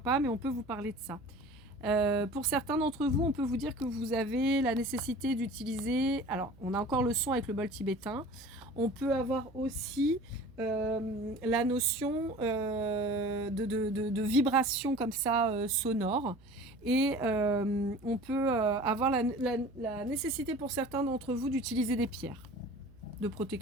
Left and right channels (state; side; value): noise; right; hum, 25 dB below the sound